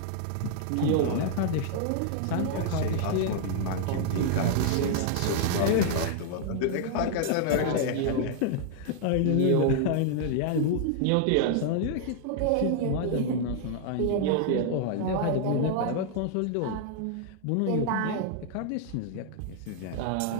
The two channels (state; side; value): different; both; correlation 0.00